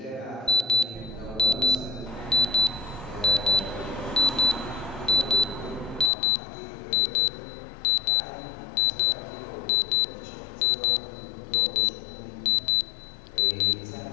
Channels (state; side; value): drops out; right; at 6.1 s